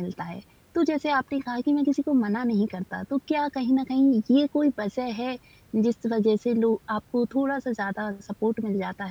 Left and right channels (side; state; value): both; identical; correlation 1.00